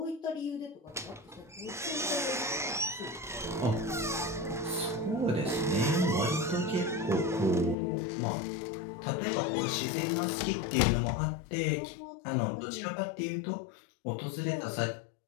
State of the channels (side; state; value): right; drops out; at 7.8 s